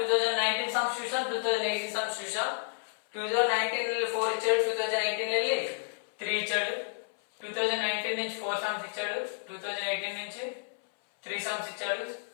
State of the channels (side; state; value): right; silent; 57 dB below the other